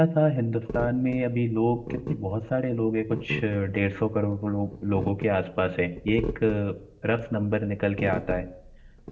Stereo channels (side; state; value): both; identical; correlation 1.00